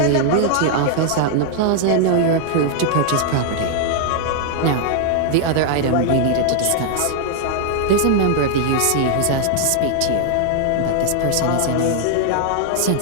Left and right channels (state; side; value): different; both; correlation -0.01